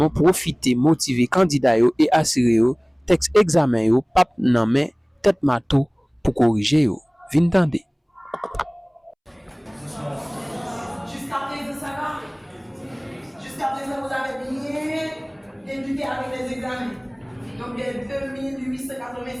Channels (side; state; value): both; identical; correlation 1.00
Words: profite motiver candidats et assurer texte examen yo pap nan men tête mato pour corriger yo. Vin tande. Jusqu'à présent, vous avez bien débuté avec les examens. Donc, les